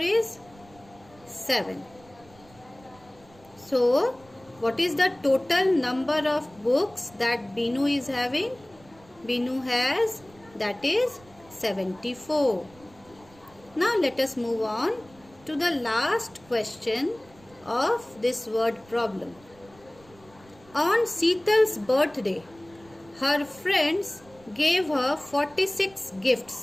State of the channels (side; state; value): right; noise; rumble, 26 dB below the sound